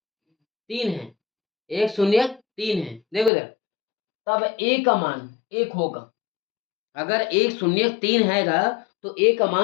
3 है। एक शून्यक 3 है। देखो इधर, तब a का मान 1 होगा। अगर एक शून्यक 3 हैगा तो a का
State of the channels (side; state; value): right; drops out; at 3.3 s